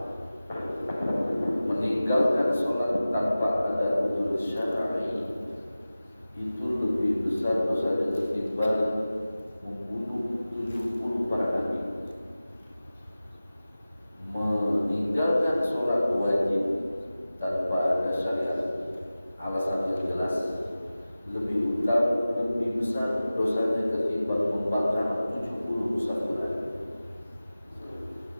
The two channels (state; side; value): inverted; both; correlation -0.96